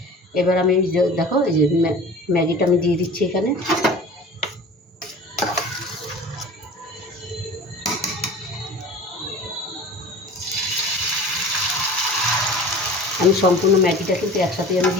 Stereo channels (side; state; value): both; normal; correlation 0.39